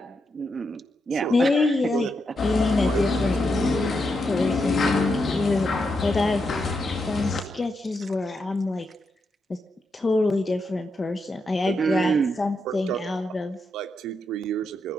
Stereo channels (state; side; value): normal; both; correlation 0.83